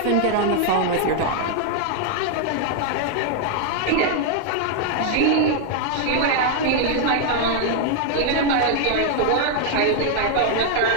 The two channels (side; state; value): both; different; correlation 0.00